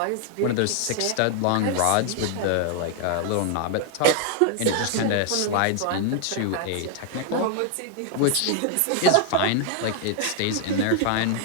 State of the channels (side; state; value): both; different; correlation 0.00